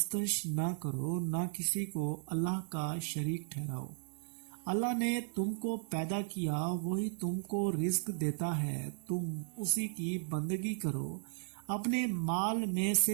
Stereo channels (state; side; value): silent; left; 54 dB below the other